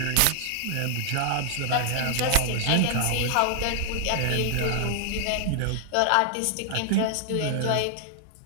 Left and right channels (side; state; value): both; different; correlation 0.00